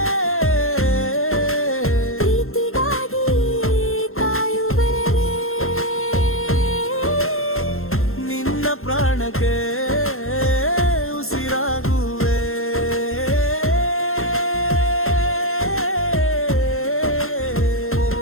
ಪ್ರೀತಿಗಾಗಿ ಕಾಯುವೆ, ನಿನ್ನ ಪ್ರಾಣಕ್ಕೆ ಉಸಿರಾಗುವೆ.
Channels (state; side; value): late; right; 0.62 ms